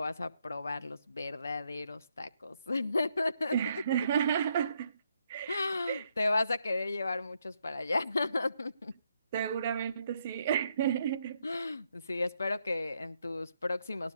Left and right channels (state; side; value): inverted; both; correlation -0.76